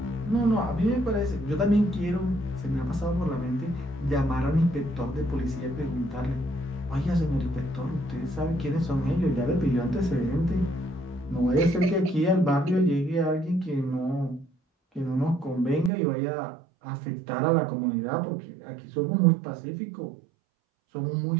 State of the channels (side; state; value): left; drops out; at 15.9 s